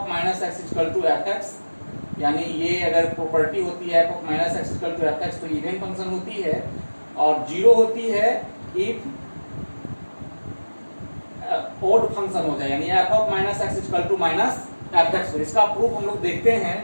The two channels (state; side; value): inverted; both; correlation -1.00